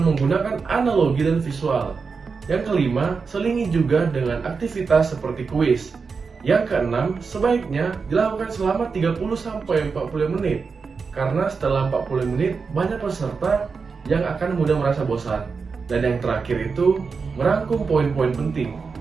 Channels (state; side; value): quieter; left; 5.1 dB